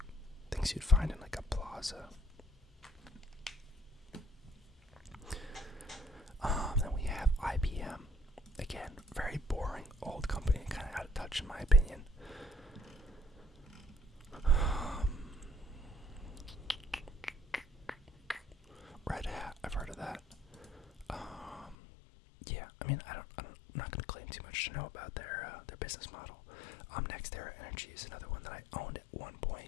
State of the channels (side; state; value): right; drops out; at 21.8 s